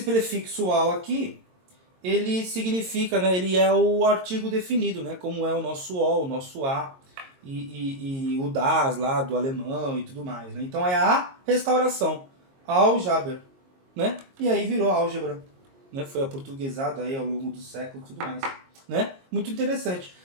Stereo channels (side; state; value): left; late; 22 ms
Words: al aqui, ele significa, né? Ele é o artigo definido, né? Como é o nosso o, o nosso a e o das lá do alemão e tudo mais, né? Então é a restauração, Aljaber, né? E aí virou álgebra, né? Foi aportuguesado aí ao longo do século e tudo mais, né? Muito interessante.